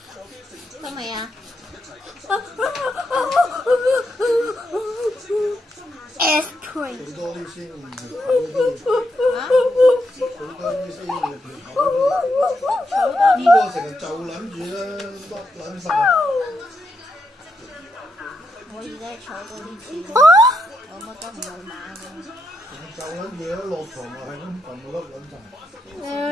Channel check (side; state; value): both; normal; correlation 0.82